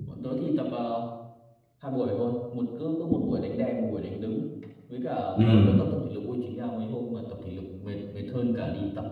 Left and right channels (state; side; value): identical; both; correlation 1.00